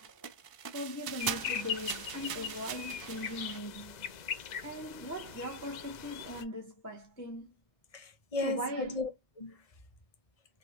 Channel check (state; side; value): late; right; 1.0 ms